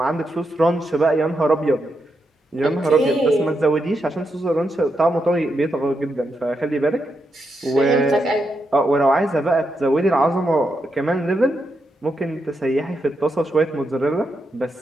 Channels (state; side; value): normal; both; correlation 0.84